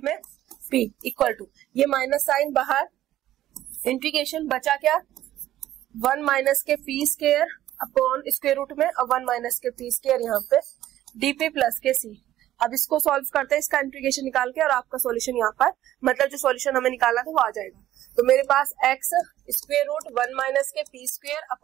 में p इक्वल टू, ये माइनस साइन बाहर, इंटीग्रेशन बचा क्या 1 माइनस के p square upon square root में और 1 माइनस के p स्क्वायर यहाँ पे dp प्लस के c। अब इसको सॉल्व करते हैं, इसका इंटीग्रेशन निकाल के, और आपका सॉल्यूशन यहाँ पर, मतलब जो सॉल्यूशन हमें निकालना था वो आ जाएगा। तो मेरे पास x स्क्वायर रूट 1 माइनस के p square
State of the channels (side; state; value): left; quieter; 13.3 dB